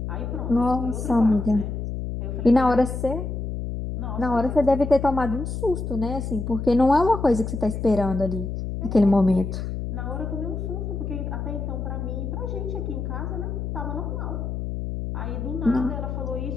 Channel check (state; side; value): noise; left; hum, 4 dB below the sound